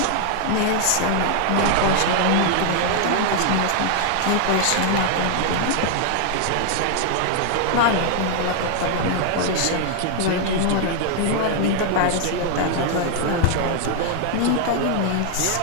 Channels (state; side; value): different; both; correlation 0.00